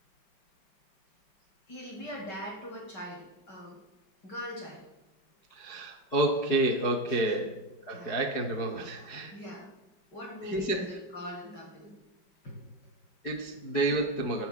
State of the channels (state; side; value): late; right; 4.8 ms